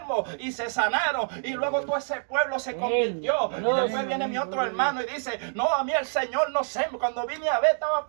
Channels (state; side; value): silent; left; 60 dB below the other